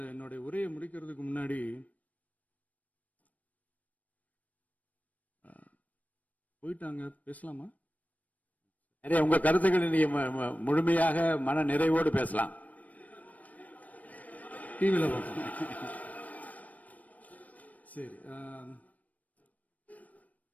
என்னுடைய உரையை முடிக்கிறதுக்கு முன்னாடி போயிட்டாங்க, பேசலாமா? உங்க கருத்துக்களை நீங்க முழுமையாக மன நிறைவோடு பேசலாம். டிவியில் பார்ப்போம். சரி,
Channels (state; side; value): late; right; 0.072 ms